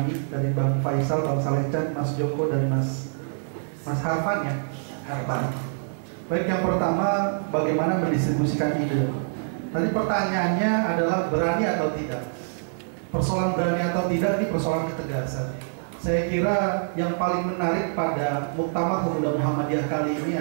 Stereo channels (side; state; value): left; silent; 61 dB below the other